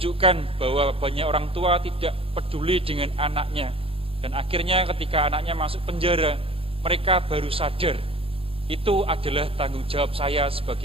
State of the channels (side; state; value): left; late; 0.27 ms